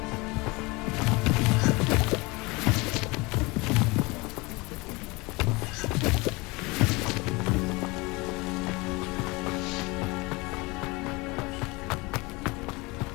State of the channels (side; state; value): right; quieter; 24.7 dB